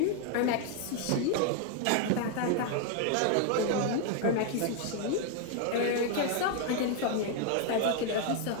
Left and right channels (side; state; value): both; different; correlation 0.00